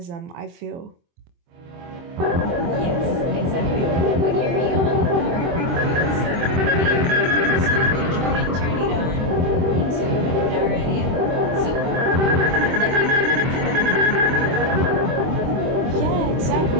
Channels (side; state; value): left; late; 23 ms